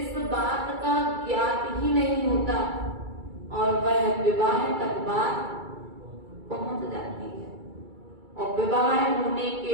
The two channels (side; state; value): left; late; 2.3 ms